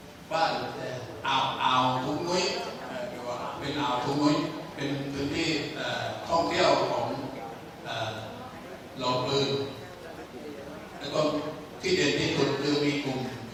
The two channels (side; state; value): both; identical; correlation 1.00